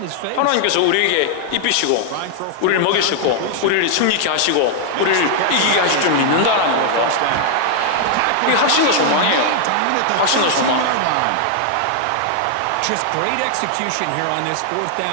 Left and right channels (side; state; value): both; different; correlation 0.00